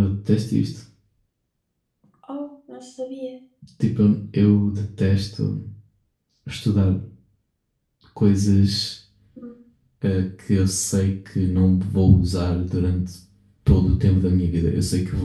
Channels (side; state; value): both; identical; correlation 1.00